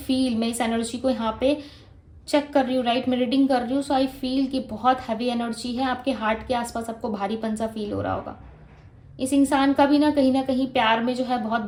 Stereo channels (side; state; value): both; identical; correlation 1.00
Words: मैं इस एनर्जी को यहाँ पे चेक कर रही हूँ, राइट, मैं रीडिंग कर रही हूँ, सो आई फील कि बहुत हैवी एनर्जी है आपके हार्ट के आसपास, आपको भारीपन सा फील हो रहा होगा। इस इंसान का भी ना कहीं प्यार में जो है बहुत